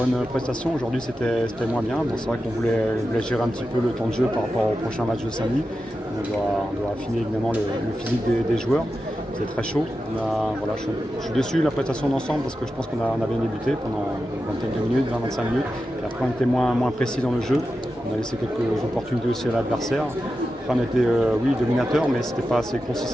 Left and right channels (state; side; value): normal; both; correlation 0.91